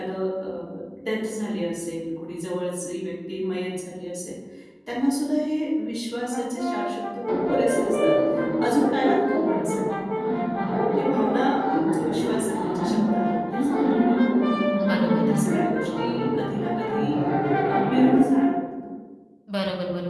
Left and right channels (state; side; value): identical; both; correlation 1.00